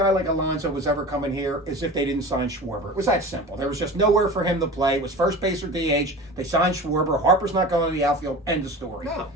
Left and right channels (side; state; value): both; normal; correlation 0.35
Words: like Alonso was ever coming here is if they didn't sign Schwarber. It was that simple. There was just nowhere for him to play. It was first base or DH. They signed Schwarber. Harper's not going to the outfield. End of story. No.